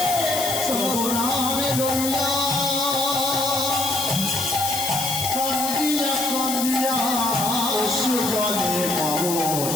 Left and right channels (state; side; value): noise; left; hiss, 3 dB below the sound